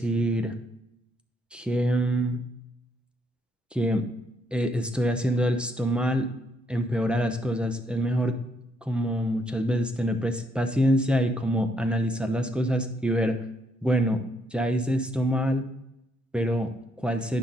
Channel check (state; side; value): normal; both; correlation 0.73